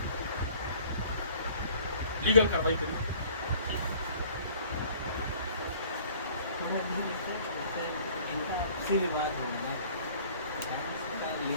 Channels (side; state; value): both; inverted; correlation -0.53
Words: लीगल कार्रवाई करिए। इनका विवाद होना